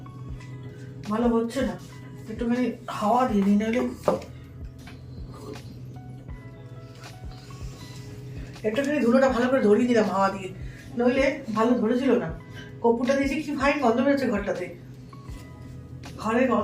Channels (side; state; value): both; identical; correlation 1.00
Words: ভালো হচ্ছে না। একটুখানি হাওয়া দিয়ে দিই, নাহলে একটুখানি ধুলোটা ভালো করে ধরিয়ে দিলাম হাওয়া দিয়ে, নইলে ভালো ধরেছিল না। কপুরটা দিয়েছি, কি ফাইন গন্ধ বেরোচ্ছে ঘরটাতে, ঘরের